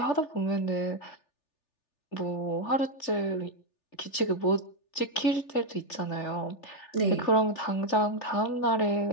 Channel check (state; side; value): late; right; 3.4 ms